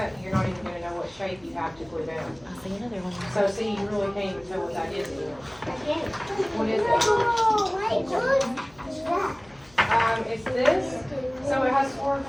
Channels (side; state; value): left; noise; hum, 27 dB below the sound